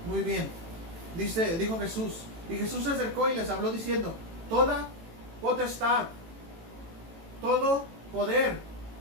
Muy bien. Dijo Jesús. Y Jesús se acercó y les habló diciendo: toda potestad, todo poder,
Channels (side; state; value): left; late; 18 ms